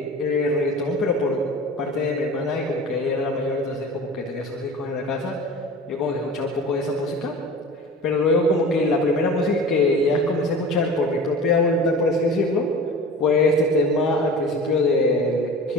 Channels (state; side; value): normal; both; correlation 0.37